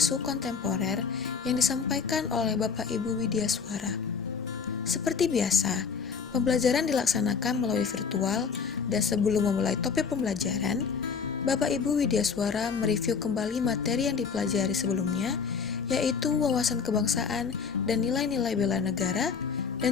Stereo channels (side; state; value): right; quieter; 5.8 dB